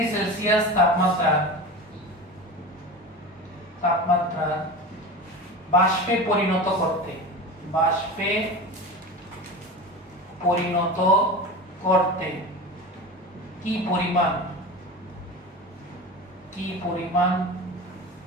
সেলসিয়াস তাপমাত্রা বাষ্পে পরিণত করতে কি পরিমাণ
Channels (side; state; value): both; normal; correlation 0.29